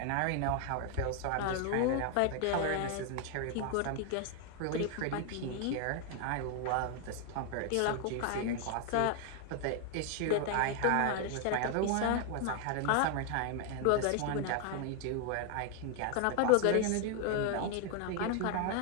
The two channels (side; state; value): both; different; correlation 0.00